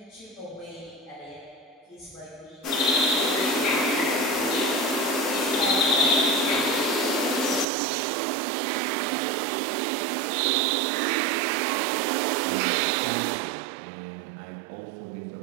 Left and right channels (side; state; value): left; drops out; at 7.7 s